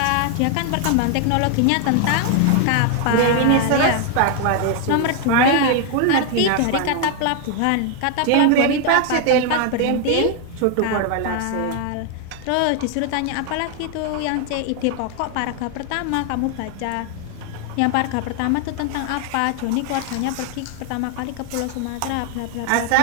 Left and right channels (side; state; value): both; different; correlation 0.00